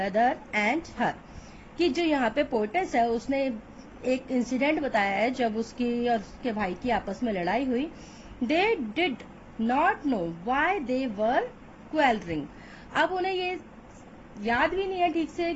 and her. कि जो यहाँ पे पोएटेस है उसने एक इंसिडेंट बताया है जब उसकी और उसके भाई की आपस में लड़ाई हुई. They did not know why they were quarrelling. अब उन्हें ये याद भी नहीं है ठीक से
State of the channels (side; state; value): both; identical; correlation 1.00